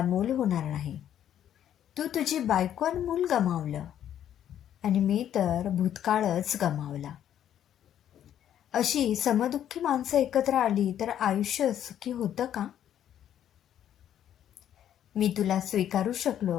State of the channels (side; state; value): right; quieter; 10.4 dB